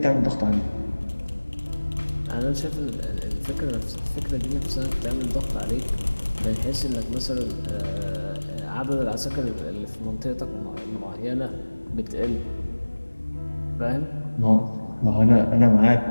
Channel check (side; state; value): both; inverted; correlation -1.00